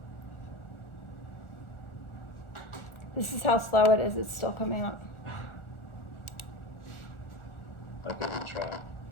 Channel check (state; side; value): late; right; 1.4 ms